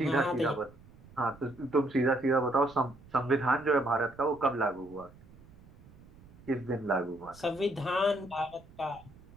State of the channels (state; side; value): noise; right; rumble, 23 dB below the sound